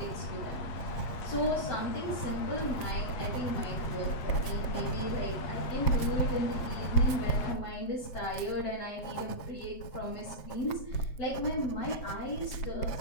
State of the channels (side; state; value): right; late; 7.6 ms